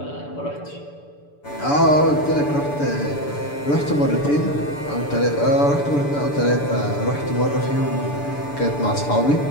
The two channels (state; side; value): late; right; 6.9 ms